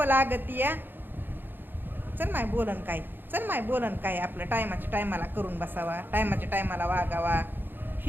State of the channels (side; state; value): left; late; 0.096 ms